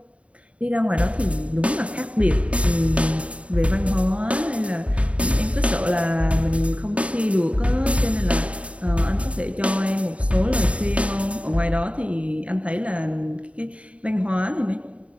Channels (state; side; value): late; left; 0.064 ms